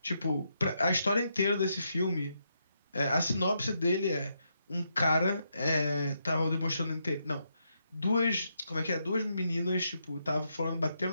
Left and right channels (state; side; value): inverted; both; correlation -0.80